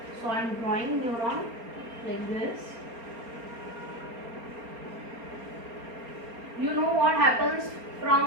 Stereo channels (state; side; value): late; left; 4.3 ms